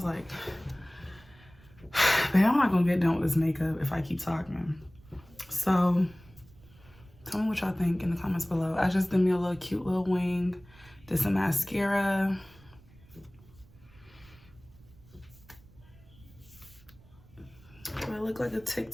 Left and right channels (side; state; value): right; noise; rumble, 25 dB below the sound